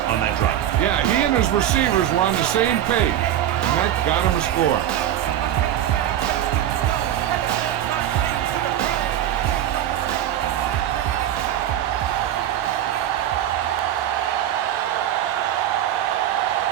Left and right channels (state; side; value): quieter; left; 11.4 dB